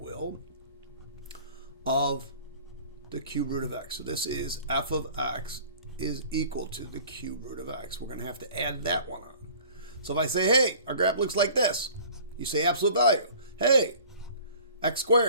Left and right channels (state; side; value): inverted; both; correlation -0.48